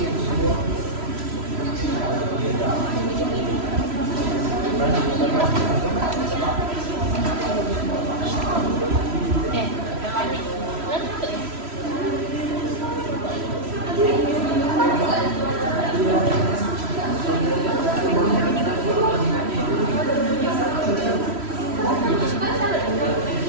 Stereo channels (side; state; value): left; late; 3.0 ms